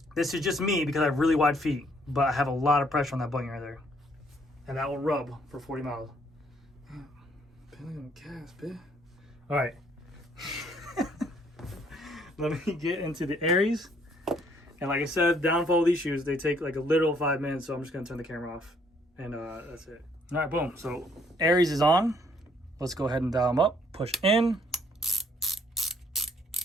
this is just me because I have really wide feet, but I have a lot of pressure on that bunion right there. And that will rub for 40 miles. All right. Let me get into the ARES. And like I said, downfall of these shoes, they take like a literal 5 minutes, so I'm just gonna turn the camera off. And that's it. All right, boom. So ARES is on. Let's go ahead and dial them up. Push in.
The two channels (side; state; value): both; normal; correlation 0.65